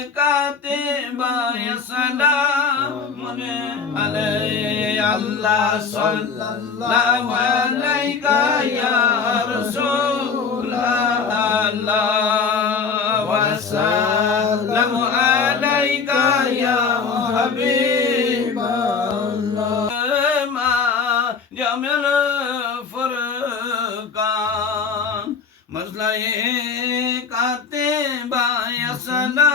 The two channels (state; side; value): quieter; right; 5.4 dB